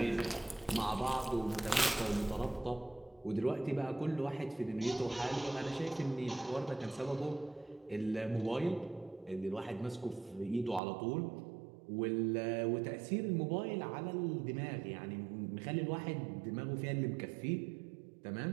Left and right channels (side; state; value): left; drops out; at 10.8 s